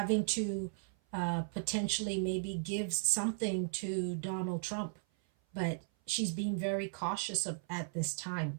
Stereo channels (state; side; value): silent; left; 54 dB below the other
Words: to potentially maybe give something to Donald Trump, but she's being very cautious at this